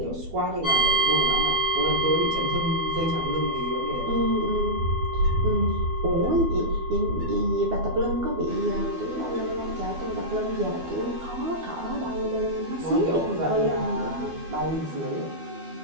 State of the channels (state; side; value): late; left; 12 ms